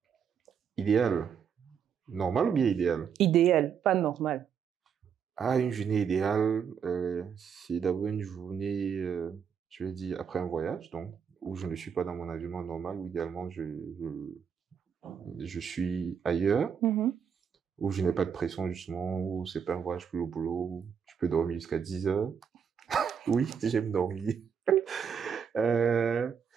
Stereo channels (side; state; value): left; quieter; 7.2 dB